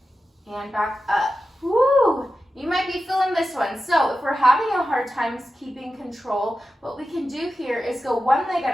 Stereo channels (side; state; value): both; normal; correlation 0.92